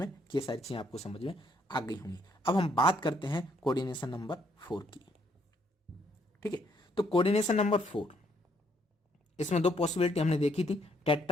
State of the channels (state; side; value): normal; both; correlation 0.70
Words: कि ये सारी चीजें आपको समझ में आ गई होंगी। अब हम बात करते हैं कोऑर्डिनेशन नंबर 4 की, ठीक है। तो कोऑर्डिनेशन नंबर 4, इसमें 2 पॉसिबिलिटी हमने देखी थी,